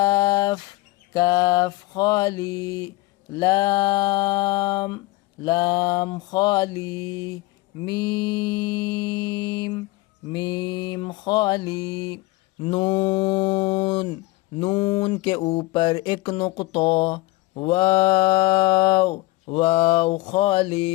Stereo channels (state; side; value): quieter; right; 20.4 dB